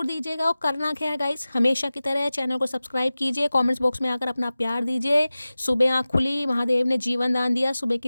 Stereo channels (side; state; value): both; inverted; correlation -0.97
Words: दीजिएगा। और करना क्या है गाइज, हमेशा की तरह चैनल को सब्सक्राइब कीजिए, कॉमेंट्स बॉक्स में आकर अपना प्यार दीजिए। सुबह आँख खुली, महादेव ने जीवन दान दिया, सुबह